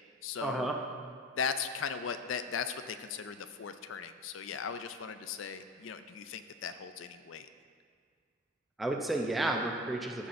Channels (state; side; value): normal; both; correlation 0.33